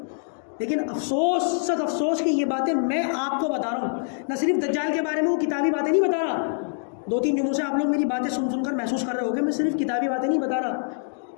لیکن افسوس، سخت افسوس کہ یہ باتیں میں آپ کو بتا رہا ہوں. نہ صرف دجال کے بارے میں وہ کتابی باتیں نہیں بتا رہا، 2-3 جمعوں سے آپ لوگ میری باتیں سن کر محسوس کر رہے ہو کہ میں صرف کتابی باتیں نہیں بتا رہا.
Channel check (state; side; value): silent; right; digital silence